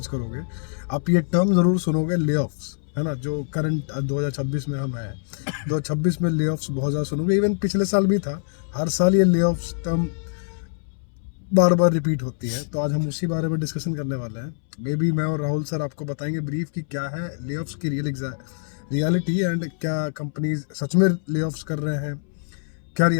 करोगे, आप ये टर्म ज़रूर सुनोगे, लेऑफ्स, है ना। जो करंट 2026 में हम हैं, 2026 में लेऑफ्स बहुत ज़्यादा सुनोगे। इवन पिछले साल भी था। हर साल ये लेऑफ्स टर्म बार बार रिपीट होती है। तो आज हम उसी बारे में डिस्कशन करने वाले हैं। मे बी मैं और राहुल सर आपको बताएंगे ब्रीफ कि क्या है लेऑफ्स की रियलिटी, एंड क्या कंपनीज सच में लेऑफ्स कर रहे हैं, क्या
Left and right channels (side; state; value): right; silent; 62 dB below the other